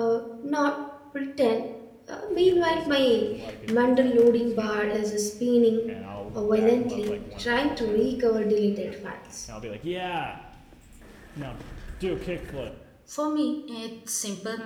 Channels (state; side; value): identical; both; correlation 1.00